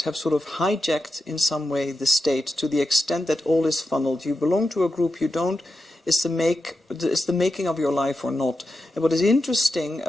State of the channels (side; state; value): both; normal; correlation 0.89